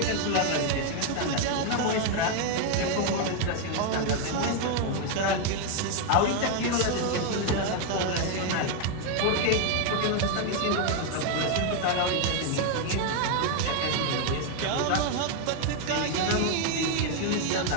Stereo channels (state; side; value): different; both; correlation 0.01